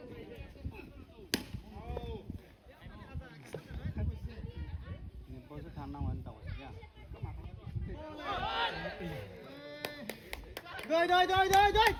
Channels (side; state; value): both; identical; correlation 1.00